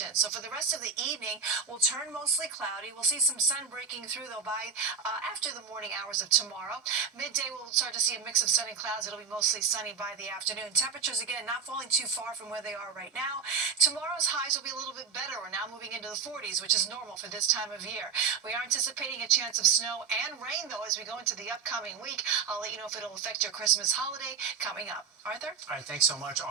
So for the rest of the evening, we'll turn mostly cloudy. We'll see some sun breaking through, though, by after the morning hours of tomorrow. Midday, we'll start to see a mix of sun and clouds. It'll be mostly sunny by the afternoon. Temperatures, again, not falling too far from where they are right now. Tomorrow's highs will be a little bit better. We're now moving into the 40s, which is normal for this time of year. We are anticipating a chance of snow and rain, though, as we go into the upcoming week. I'll let you know if it'll affect your Christmas holiday coming up. Arthur? All right, thanks so much,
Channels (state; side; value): quieter; left; 6.0 dB